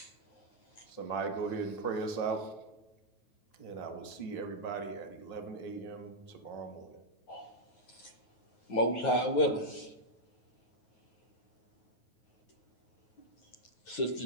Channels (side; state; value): right; late; 9.3 ms